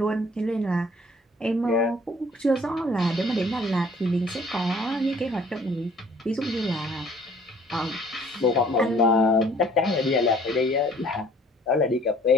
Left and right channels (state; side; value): normal; both; correlation 0.56